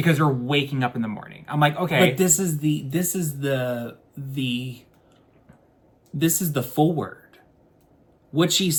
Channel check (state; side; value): identical; both; correlation 1.00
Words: you're waking up in the morning. I'm like, okay. But this is the forward. What she's